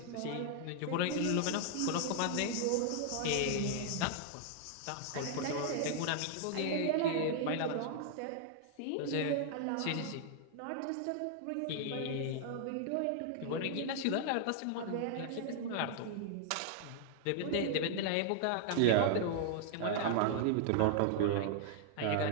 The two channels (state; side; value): different; both; correlation -0.01